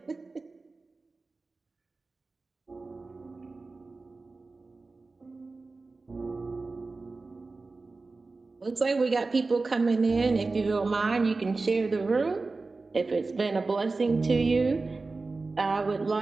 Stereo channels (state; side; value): quieter; left; 3.7 dB